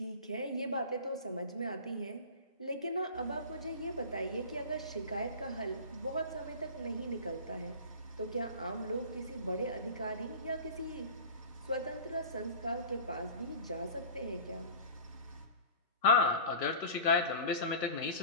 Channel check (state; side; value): inverted; both; correlation -0.36